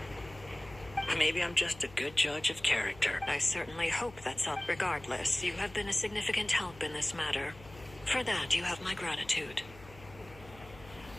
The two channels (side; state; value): left; noise; hum, 20 dB below the sound